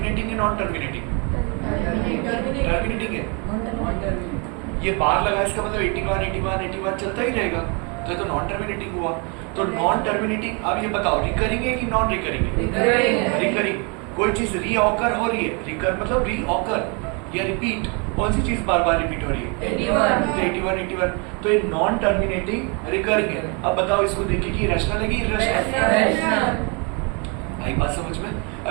है नॉन टर्मिनेटिंग, टर्मिनेटिंग है, ये बार लगा इसका मतलब 81 81 81 चलता ही रहेगा, तो ये तो नॉन टर्मिनेटिंग हुआ। तो नॉन टर्मिनेटिंग, अब ये बताओ रिकरिंग है कि नॉन रिकरिंग है? रिकरिंग। कोई चीज रीऑकर हो रही है, रिकर मतलब रीऑकर या रिपीट, कौन सी चीज बार बार रिपीट हो रही है? 81 81, तो ये नॉन टर्मिनेटिंग रिकरिंग है। अब बताओ इसको देखिए कि रैशनल है कि इरैशनल? आई बात समझ में?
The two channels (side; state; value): left; quieter; 33.5 dB